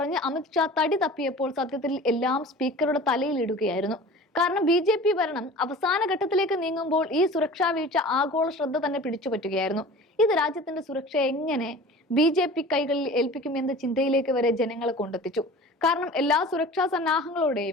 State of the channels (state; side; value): normal; both; correlation 0.40